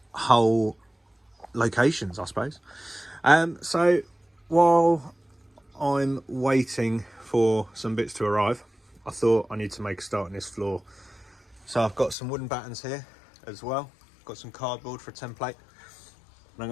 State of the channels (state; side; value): drops out; right; at 12.2 s